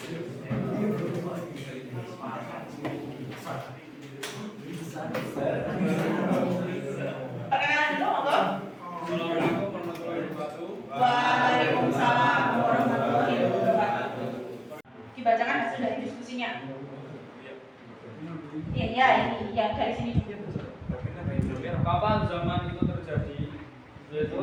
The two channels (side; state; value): both; identical; correlation 1.00